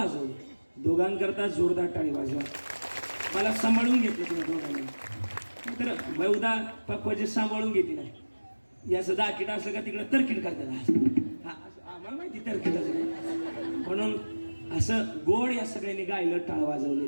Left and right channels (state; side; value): inverted; both; correlation -1.00